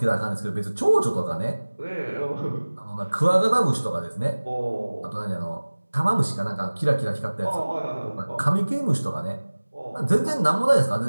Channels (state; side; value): inverted; both; correlation -1.00